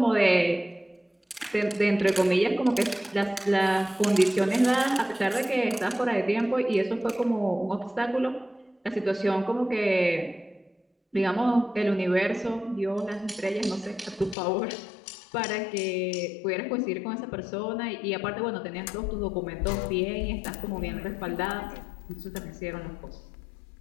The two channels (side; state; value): right; drops out; at 14.4 s